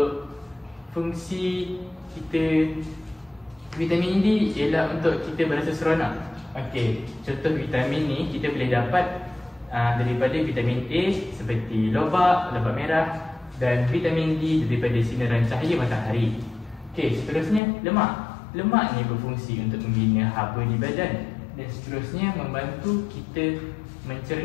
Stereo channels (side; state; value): right; drops out; at 17.6 s